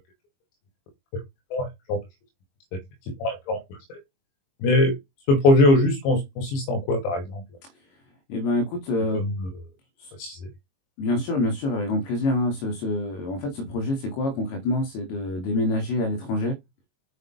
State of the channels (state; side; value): late; right; 22 ms